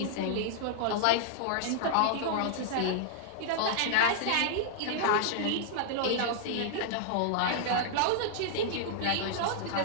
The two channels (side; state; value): both; different; correlation -0.01